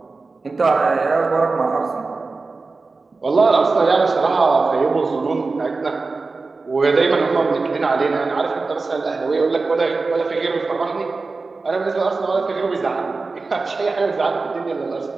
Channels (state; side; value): quieter; left; 3.9 dB